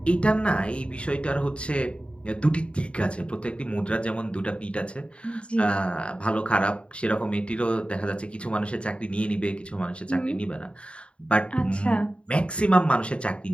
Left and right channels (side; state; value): right; late; 0.058 ms